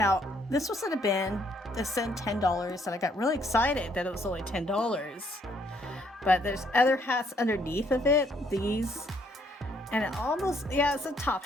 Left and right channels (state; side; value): normal; both; correlation 0.68